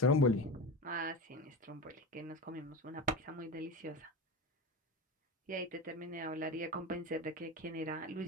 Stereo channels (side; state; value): both; normal; correlation 0.25